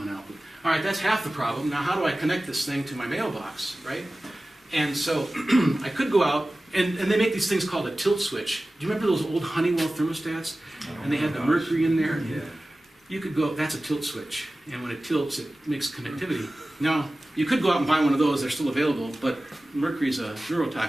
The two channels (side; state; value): both; normal; correlation 0.97